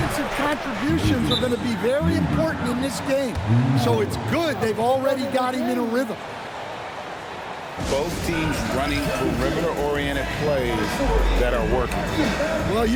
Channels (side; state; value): both; identical; correlation 1.00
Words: contributions are going to be very important in this game. So it's good they've already got him in a rhythm. Both teams running perimeter-oriented plays that are working. Well,